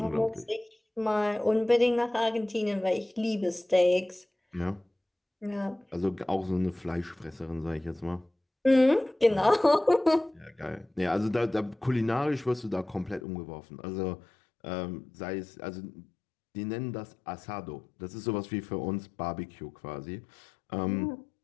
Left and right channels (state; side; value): drops out; right; at 13.2 s